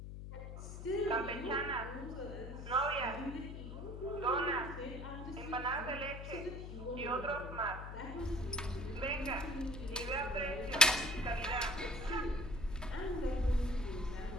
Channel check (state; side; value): noise; left; hum, 8 dB below the sound